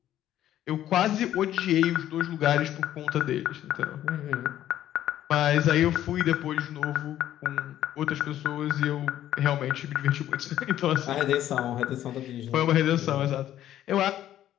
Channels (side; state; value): right; quieter; 12.2 dB